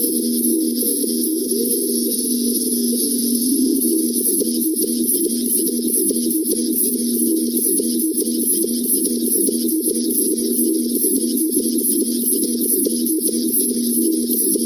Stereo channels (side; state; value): both; identical; correlation 1.00